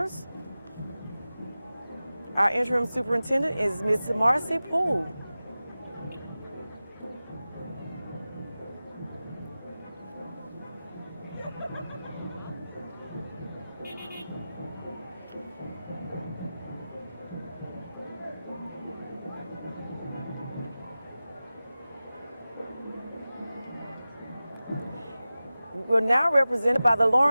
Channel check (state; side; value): inverted; both; correlation -0.96